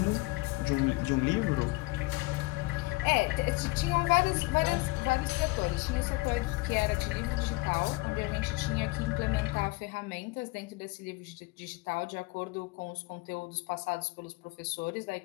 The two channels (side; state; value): right; quieter; 23.4 dB